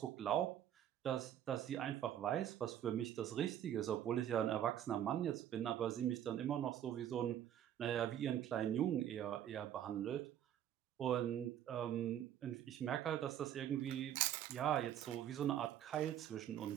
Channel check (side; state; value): left; quieter; 10.7 dB